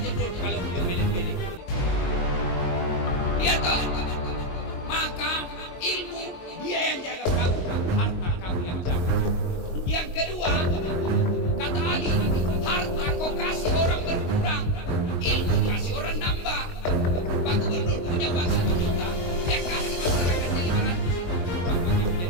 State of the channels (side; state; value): right; late; 22 ms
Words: kalau beliau milih-milih. Iya toh? Maka ilmu dia yang jaga kamu, harta kamu yang jaga. Yang kedua, kata Ali, harta kau kasih orang berkurang, ilmu kasih orang nambah. Pak Gubernur punya uang 1 juta, dia kasih masyarakatnya 500, berkurang makin